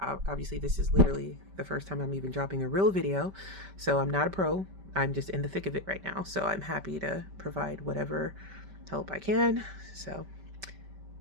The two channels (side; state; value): left; late; 5.1 ms